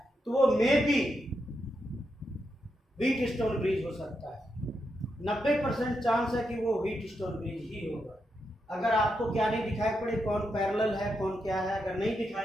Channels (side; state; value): both; normal; correlation 0.84